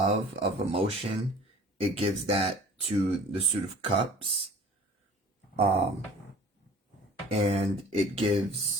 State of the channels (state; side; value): normal; both; correlation 0.46